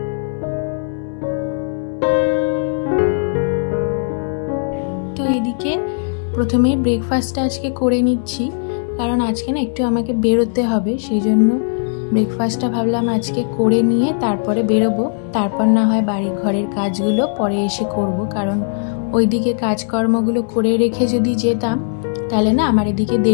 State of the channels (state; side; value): silent; right; 63 dB below the other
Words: তো এদিকে প্রথমে ব্রেকফাস্টটা আজকে করে নিচ্ছি, কারণ আজকে না একটু আমাকে বেরোতে হবে। সেই জন্য ব্রেকফাস্টটা ভাবলাম আজকে করে নিয়ে তারপরে বেরোবো। তারপর না হয় বাড়ি ঘরের কাজগুলো পরে এসে করব, কারণ ওইদিকে কাজকর্মগুলো করে রেখে যদি যেতাম তাহলে না আমার এদিকে